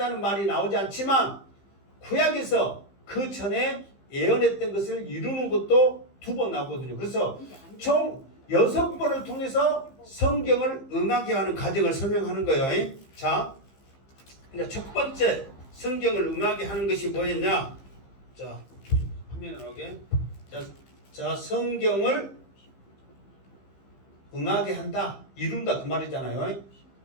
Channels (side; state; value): right; late; 15 ms